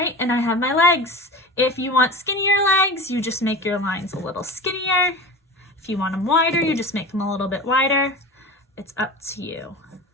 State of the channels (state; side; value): normal; both; correlation 0.32